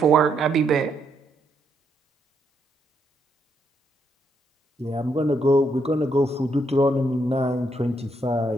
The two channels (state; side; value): normal; both; correlation 0.76